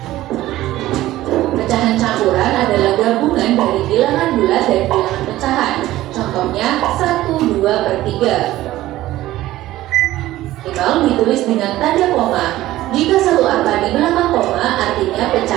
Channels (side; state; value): left; quieter; 15.6 dB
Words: Pecahan campuran adalah gabungan dari bilangan bulat dan bilangan pecahan, contohnya 1, 2/3. Nol ditulis dengan tanda koma. Jika satu angka di belakang koma, artinya